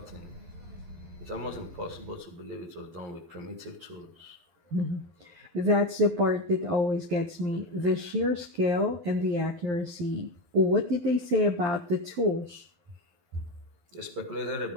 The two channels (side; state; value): left; late; 11 ms